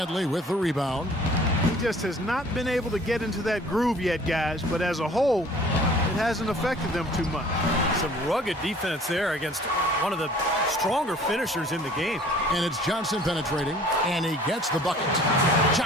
with the rebound. He just has not been able to get into that groove yet, guys. But as a whole, it hasn't affected them too much. Some rugged defense there against one of the stronger finishers in the game. And it's Johnson penetrating, and he gets the bucket.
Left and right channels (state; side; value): normal; both; correlation 0.51